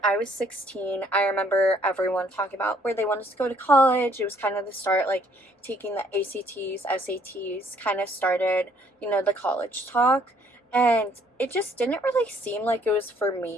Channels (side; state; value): both; normal; correlation 0.63